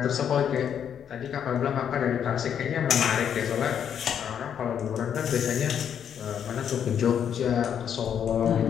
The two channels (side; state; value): right; quieter; 8.6 dB